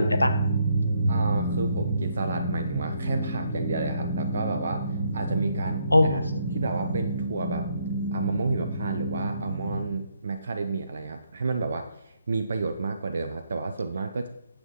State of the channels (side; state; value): both; inverted; correlation -0.74